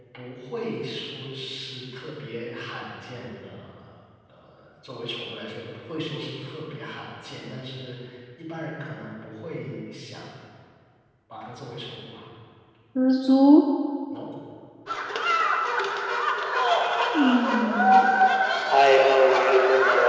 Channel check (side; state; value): both; identical; correlation 1.00